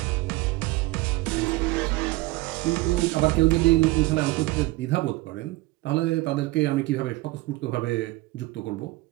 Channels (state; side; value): quieter; left; 20.5 dB